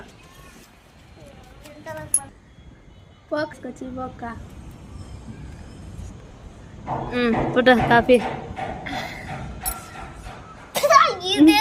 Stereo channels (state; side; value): identical; both; correlation 1.00